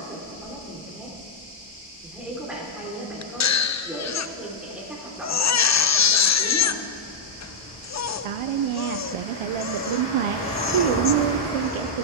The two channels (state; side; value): normal; both; correlation -0.04